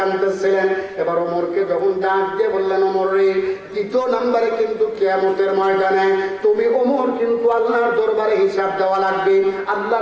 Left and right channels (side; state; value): both; identical; correlation 1.00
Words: এবার ওমরকে যখন ডাক দিয়ে বললেন, ওমর রে, দ্বিতীয় নম্বরে কিন্তু কিয়ামতের ময়দানে তুমি ওমর কিন্তু আল্লাহর দরবারে হিসাব দেওয়া লাগবে,